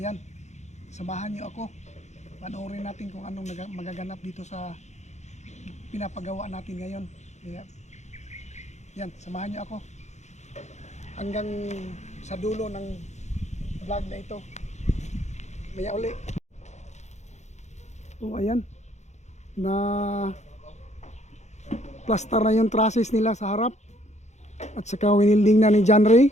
samahan niyo ako. Panoorin natin kung anong magaganap dito sa pinapagawa natin ngayon. Kaya yan, samahan niyo ako hanggang sa dulo ng vlog na ito. Maya uli. So ayan, na plaster na yung trusses nila sa harap at saka winilding na ni John Ray.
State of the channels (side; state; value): right; late; 0.33 ms